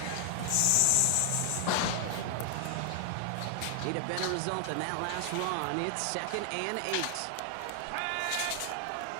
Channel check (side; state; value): both; different; correlation 0.00